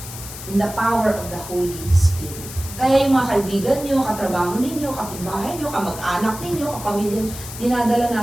In the power of the Holy Spirit. Kaya yung mga kaibigan nyo, katrabaho ninyo, kapitbahay nyo, kamag-anak ninyo, kapamilya, dinadala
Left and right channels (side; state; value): left; noise; hiss, 12 dB below the sound